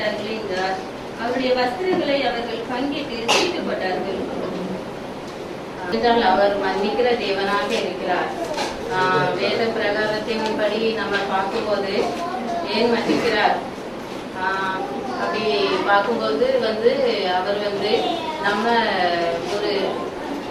என்றார். அவருடைய வஸ்திரங்களை அவர்கள் பங்கிட்டு தீட்டு போட்டார்கள். என்றால் அவர் மன்னிக்கிற தேவனாக இருக்கிறார். வேத பிரகாரத்தின்படி நம்ம பார்க்கும்போது ஏன் மன்னிக்கிறார் அப்படி பார்க்கும்போது அவர் நம்ம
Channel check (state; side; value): identical; both; correlation 1.00